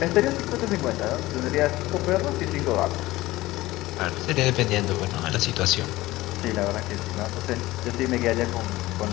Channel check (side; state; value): right; quieter; 18.0 dB